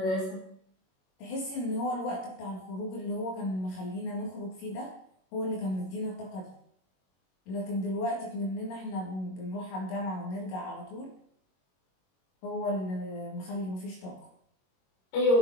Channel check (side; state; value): right; late; 21 ms